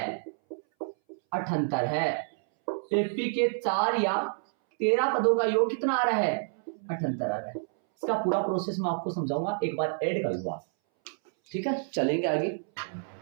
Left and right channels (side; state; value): left; silent; 59 dB below the other